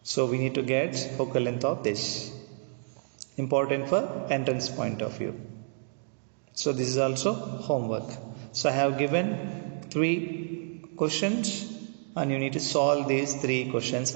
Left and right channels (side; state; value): left; silent; digital silence